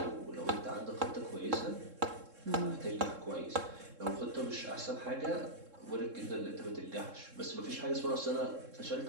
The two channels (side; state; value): left; late; 3.7 ms